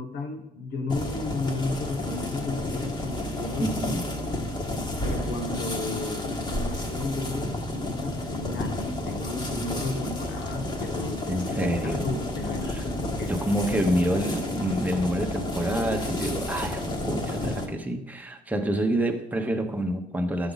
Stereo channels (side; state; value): both; normal; correlation 0.68